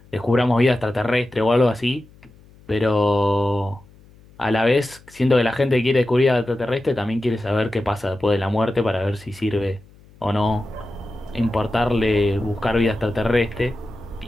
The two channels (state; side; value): noise; left; hum, 26 dB below the sound